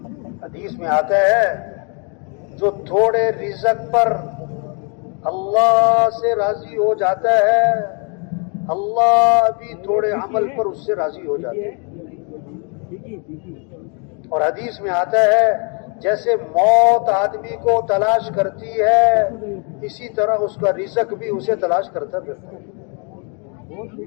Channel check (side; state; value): right; quieter; 36.4 dB